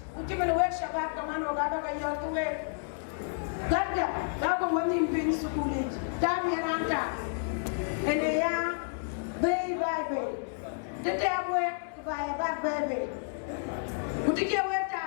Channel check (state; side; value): silent; right; digital silence